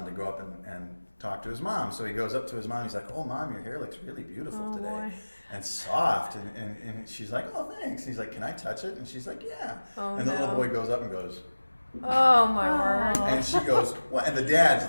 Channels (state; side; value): inverted; both; correlation -1.00